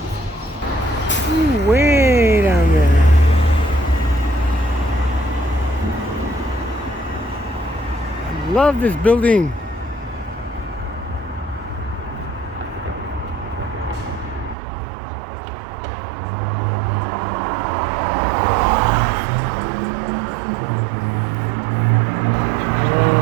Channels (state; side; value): drops out; left; at 14.6 s